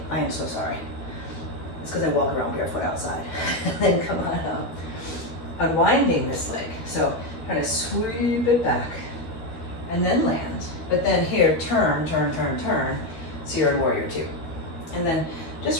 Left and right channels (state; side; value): late; right; 13 ms